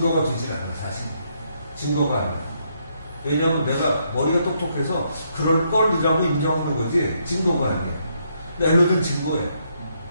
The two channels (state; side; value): inverted; both; correlation -0.75